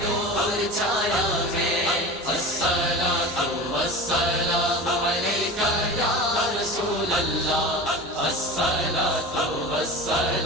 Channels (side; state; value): both; normal; correlation 0.32